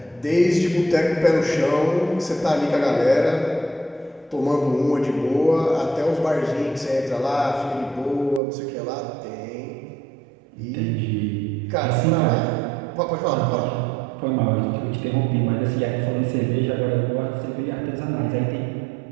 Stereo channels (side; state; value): left; drops out; at 8.4 s